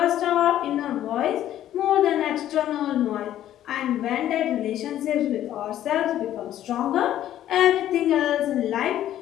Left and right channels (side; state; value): right; quieter; 12.1 dB